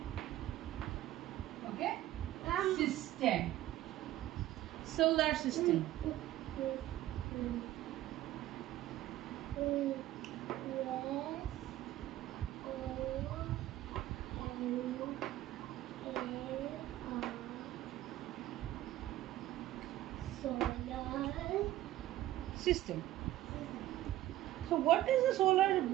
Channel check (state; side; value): quieter; left; 14.6 dB